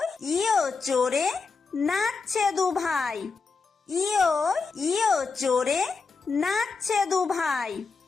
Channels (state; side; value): quieter; right; 4.7 dB